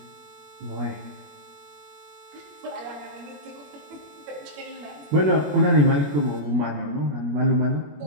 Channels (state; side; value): late; left; 21 ms